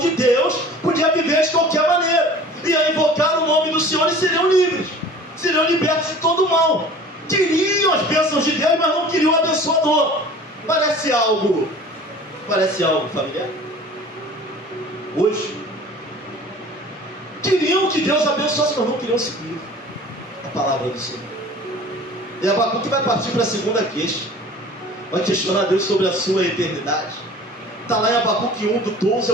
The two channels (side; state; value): both; normal; correlation 0.44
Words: Deus, podia viver de qualquer maneira. Ia invocar o nome do Senhor e seriam livres. Seriam libertos de todo o mal. Queriam as bênçãos de Deus, mas não queriam o abençoador. Parece algo familiar? Hoje queriam que Deus abençoasse, mas não queriam seguir a palavra do Senhor. E Abacuque vai partir para a segunda queixa. Vai questionar Deus sobre a sua eternidade. Está lá em Abacuque 1, do 12